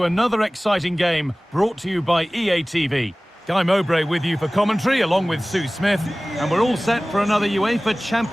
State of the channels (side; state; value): both; normal; correlation 0.98